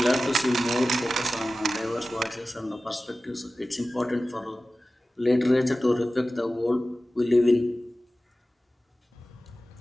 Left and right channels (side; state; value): both; normal; correlation 0.96